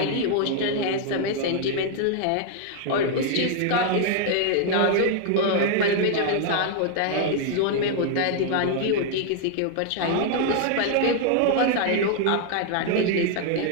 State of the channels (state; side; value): different; both; correlation 0.00